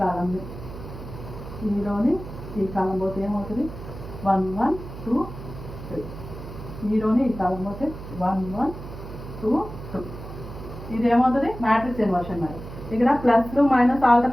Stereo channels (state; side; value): noise; right; hum, 12 dB below the sound